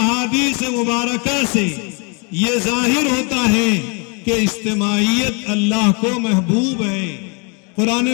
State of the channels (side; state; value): right; quieter; 33.5 dB